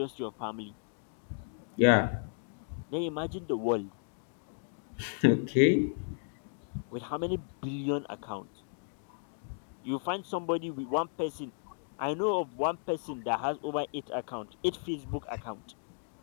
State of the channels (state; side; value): silent; right; 55 dB below the other